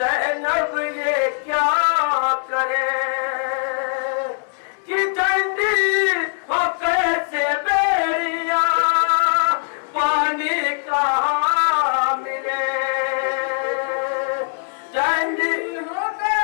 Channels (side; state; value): right; silent; digital silence